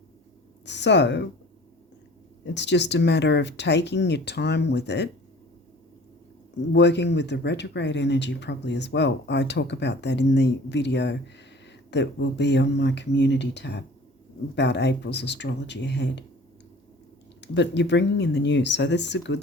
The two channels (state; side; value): normal; both; correlation 0.46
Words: So it's just a matter of taking your time with it, working with the retrograde energy probably as well. I talk about that in the video that will be on my community tab about April's astrology ahead. But you're bringing in the new, so this is a